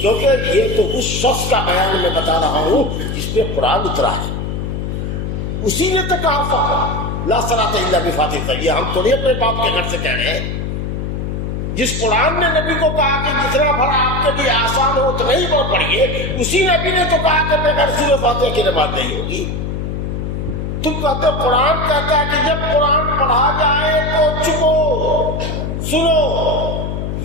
یہ تو اس شخص کا بیان میں بتا رہا ہوں جس پہ قرآن اترا ہے، اسی نے تو کہا فقط لا صلاۃ الا بفاتحہ۔ یہ ہم تھوڑی اپنے باپ کے گھر سے کہہ رہے ہیں، جس قرآن نے نبی کو کہا کہ جتنا بھر آپ کے لیے آسان ہو تو نہیں وہ پڑھیے، اسی نبی نے تو کہا کہ بغیر سورہ فاتحہ کی نماز نہیں ہوگی۔ تم کہتے ہو قرآن کہتا ہے کہ جب قرآن پڑھا جائے تو چپو سنو،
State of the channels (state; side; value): noise; left; hum, 3 dB below the sound